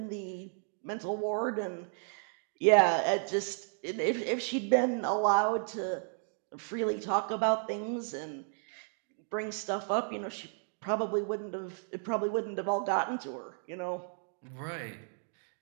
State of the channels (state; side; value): silent; left; 56 dB below the other